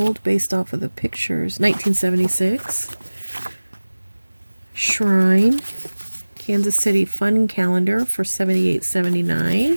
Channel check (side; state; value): both; inverted; correlation -1.00